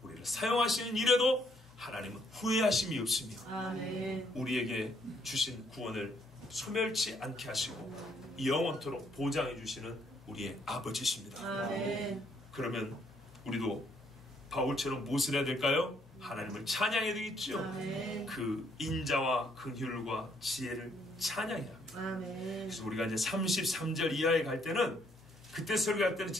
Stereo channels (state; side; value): normal; both; correlation 0.69